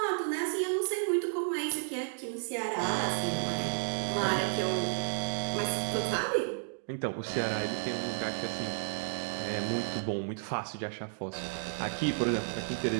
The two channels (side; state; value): left; silent; digital silence